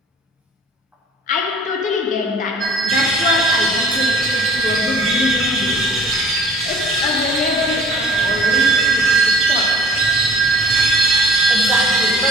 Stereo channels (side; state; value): both; normal; correlation 0.48